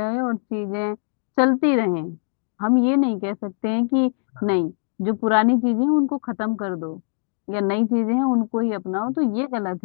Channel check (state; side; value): silent; right; digital silence